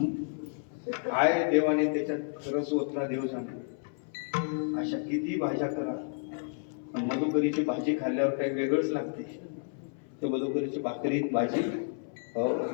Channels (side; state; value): right; silent; 57 dB below the other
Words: काय देवाने त्याच्यात खरंच ओतला देव जाणे. अशा किती भाज्या करा, पण मधुकरीची भाजी खाल्ल्यावर काही वेगळंच लागते. तर मधुकरीची भाकरीत भाजी